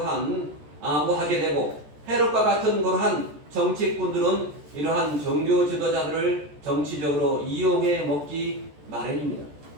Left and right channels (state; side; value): late; left; 14 ms